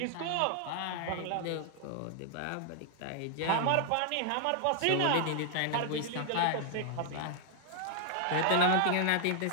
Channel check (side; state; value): both; different; correlation 0.00